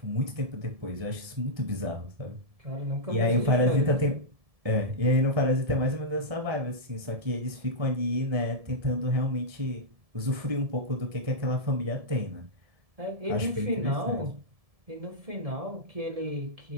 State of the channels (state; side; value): late; left; 1.7 ms